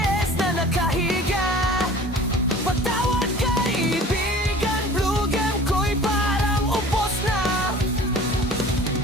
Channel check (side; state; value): both; normal; correlation 0.44